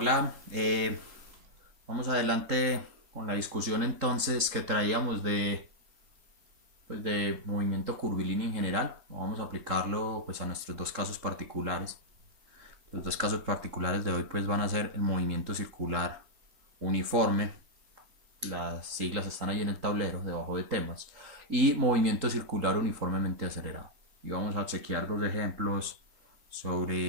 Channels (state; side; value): late; left; 3.8 ms